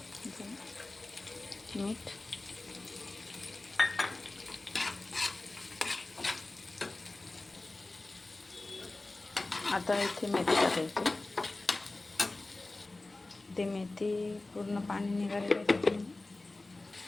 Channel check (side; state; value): right; quieter; 3.1 dB